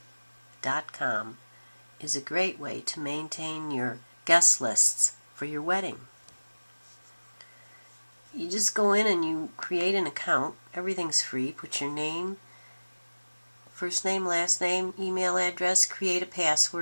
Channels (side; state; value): both; inverted; correlation -1.00